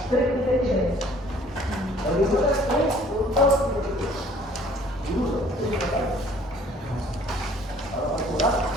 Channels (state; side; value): normal; both; correlation 0.55